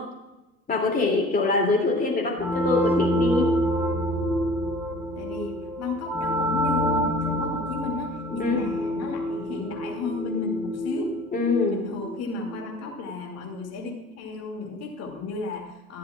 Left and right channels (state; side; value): normal; both; correlation 0.45